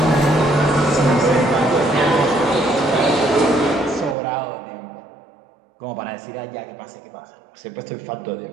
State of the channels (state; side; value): drops out; left; at 4.2 s